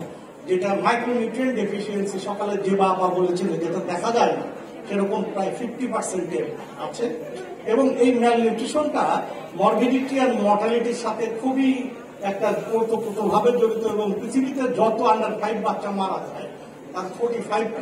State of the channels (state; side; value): identical; both; correlation 1.00